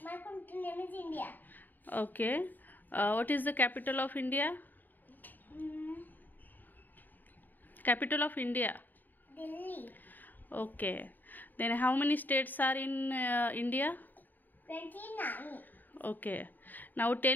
My country name is India. Okay. What is the capital of India? Capital of India. Delhi. Okay. Then how many states are in India? 29. Okay. Now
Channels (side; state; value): right; late; 0.088 ms